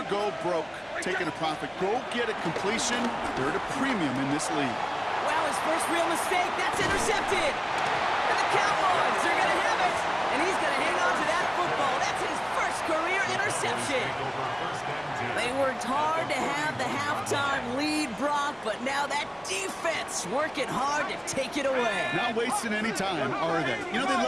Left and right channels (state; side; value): identical; both; correlation 1.00